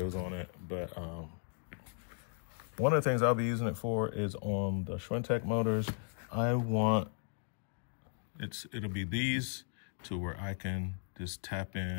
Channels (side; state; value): right; silent; 54 dB below the other